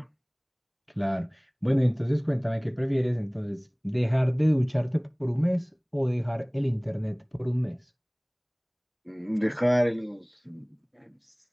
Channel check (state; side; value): identical; both; correlation 1.00